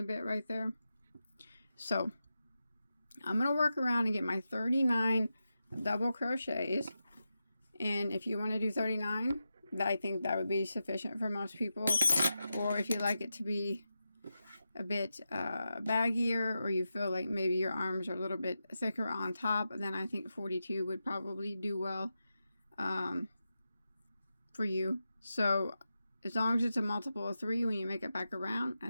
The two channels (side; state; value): both; inverted; correlation -0.90